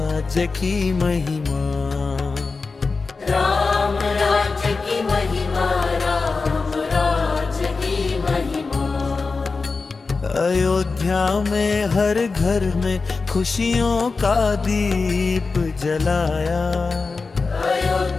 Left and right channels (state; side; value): quieter; right; 4.2 dB